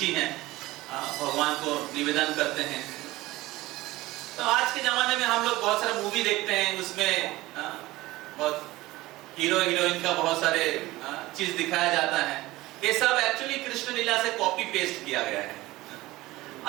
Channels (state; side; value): quieter; left; 18.7 dB